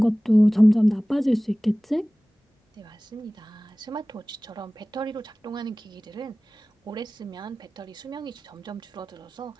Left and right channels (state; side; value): normal; both; correlation 0.98